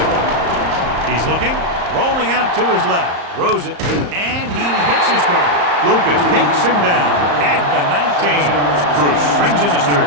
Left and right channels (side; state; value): left; late; 34 ms